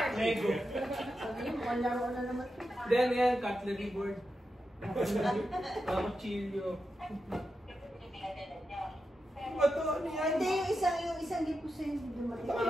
Lego. Sabihin mo, laro na naman. Then yan, cutlery board. Cuchillo. Bato, ano yan? Hindi, yung isang lipo sa hindi dumating.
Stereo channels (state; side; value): normal; both; correlation 0.89